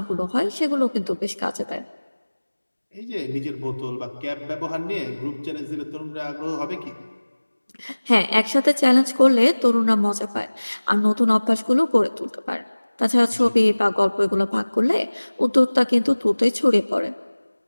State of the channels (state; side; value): inverted; both; correlation -1.00